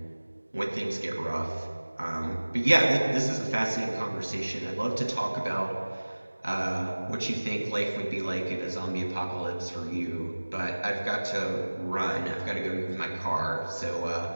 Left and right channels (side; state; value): both; inverted; correlation -1.00